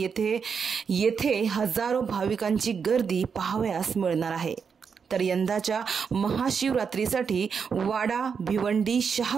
येथे हजारो भाविकांची गर्दी पाहावयास मिळणार आहे। तर यंदाच्या महाशिवरात्रीसाठी वाडा, भिवंडी,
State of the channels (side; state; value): left; quieter; 6.2 dB